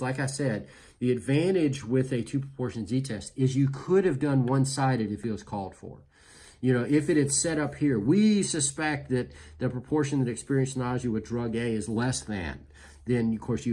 I said, the advantage with a two proportion z-test is you could have done one-sided if it was called for. You know, if it had set up here, we suspect that the proportion that experienced nausea with drug A is less than, then of course you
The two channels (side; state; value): both; identical; correlation 1.00